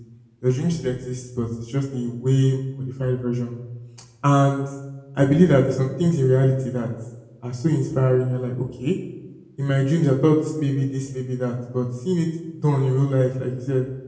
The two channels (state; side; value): identical; both; correlation 1.00